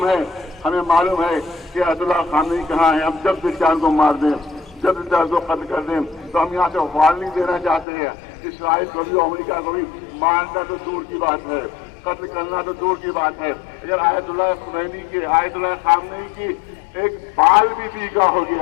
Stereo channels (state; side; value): drops out; right; at 7.9 s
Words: ہے، ہمیں معلوم ہے کہ آیت اللہ خامنئی کہاں ہے. ہم جب بھی چاہیں کو مار دیں، جب بھی چاہیں کو قتل کر دیں. تو ہم یہاں سے وارننگ دینا چاہتے ہیں اسرائیل کو بھی، امریکہ کو بھی. مارنا تو دور کی بات ہے، قتل کرنا تو دور کی بات ہے. اگر آیت اللہ خمینی کی، آیت اللہ خامنئی کی ایک بال بھی پیکا ہو